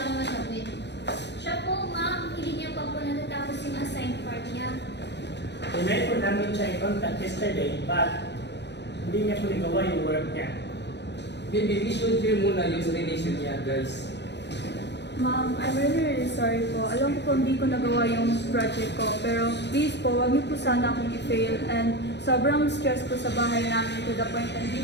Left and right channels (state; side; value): late; right; 0.50 ms